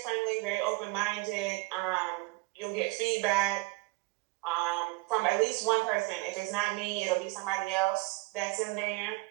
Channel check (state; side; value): quieter; left; 24.1 dB